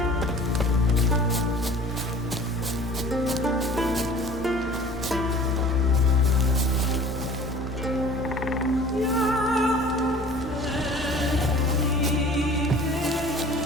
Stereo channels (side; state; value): both; normal; correlation 0.45